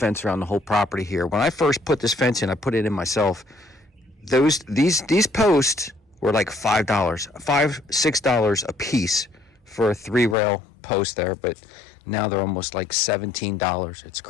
around the whole property here. When I first put this fence in, I put it in myself. These posts were like $6 a piece for a 3-rail post there, but now they're almost like $17. It's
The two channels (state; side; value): drops out; right; at 10.4 s